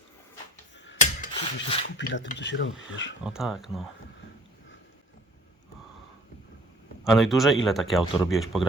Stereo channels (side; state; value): both; normal; correlation 0.52